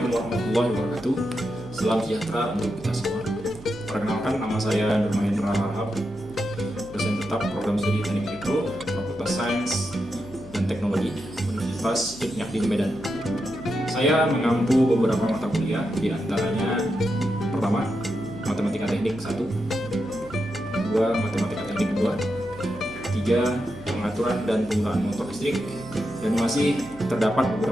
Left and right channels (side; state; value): right; noise; hum, 20 dB below the sound